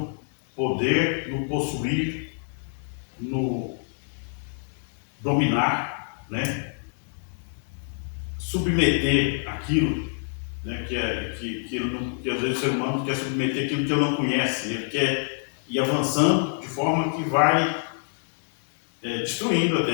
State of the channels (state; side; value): silent; right; digital silence